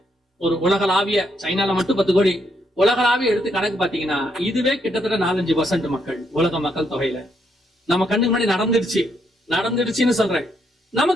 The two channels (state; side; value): normal; both; correlation 0.75